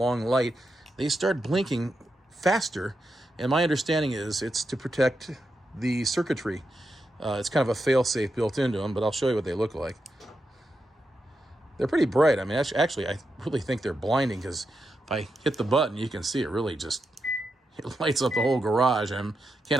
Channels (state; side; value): normal; both; correlation 0.87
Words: light, they start blinking faster. And my understanding is it's to protect the circuitry. It's kind of a fail-safe built into them, but I'll show you what they look like. They're pretty bright. I mean, actually, I really think they're blinding, because if I hit the button, you can see it really just it lights up the whole garage. I